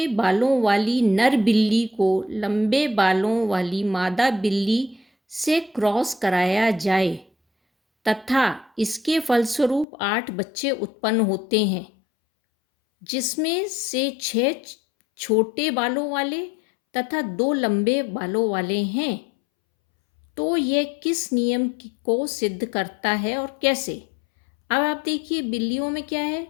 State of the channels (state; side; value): drops out; right; at 9.9 s